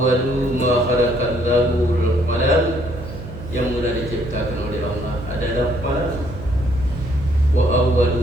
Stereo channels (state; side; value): noise; right; hum, 12 dB below the sound